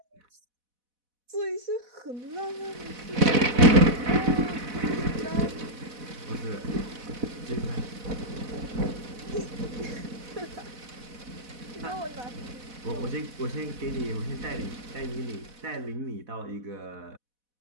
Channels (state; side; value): late; left; 4.1 ms